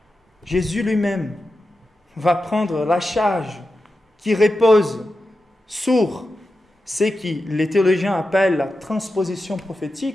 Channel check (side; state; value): both; normal; correlation 0.91